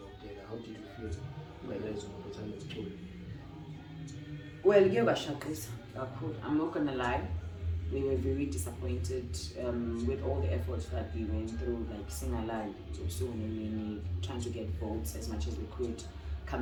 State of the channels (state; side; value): identical; both; correlation 1.00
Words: How did you feel when there was a time of tour? Well, I'm not gonna lie, we were very disappointed with all the efforts that we went through, like Sing Alive, so many trying to get votes as much as we could.